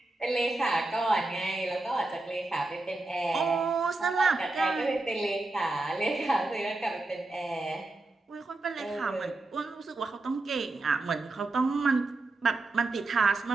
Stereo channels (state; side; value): quieter; left; 3.1 dB